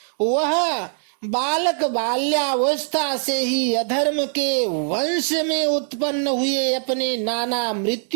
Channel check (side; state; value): left; silent; digital silence